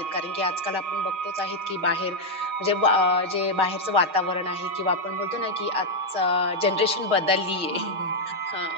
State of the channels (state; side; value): late; left; 6.4 ms